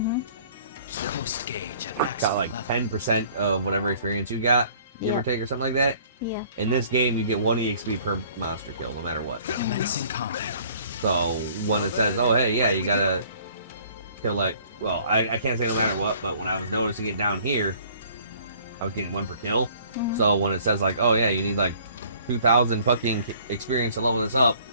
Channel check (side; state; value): both; inverted; correlation -0.55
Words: Boost gauge at maximum got like level. 10% of whatever experience you got, give or Yeah. take, or something like that. Yeah. In this game, you get 1 EXP per monster kill, no matter what. Commencing combat. So when it says, oh hey, yeah, you gotta kill like, well, I can't say no matter what, but when I was noticing it down here, I was getting 1 per kill. Mhm. So when it says like, oh yeah, you need like 2,000 fucking experience to level this up,